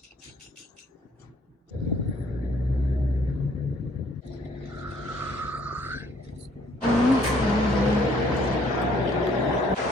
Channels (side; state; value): both; normal; correlation 0.62